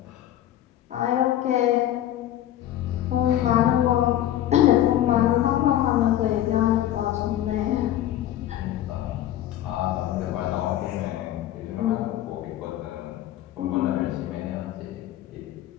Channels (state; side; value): quieter; right; 12.6 dB